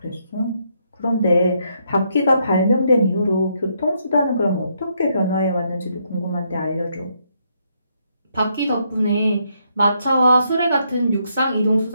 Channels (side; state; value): both; inverted; correlation -0.75